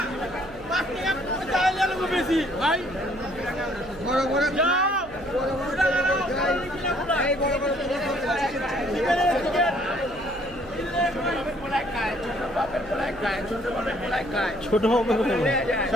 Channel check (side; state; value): right; noise; hum, 19 dB below the sound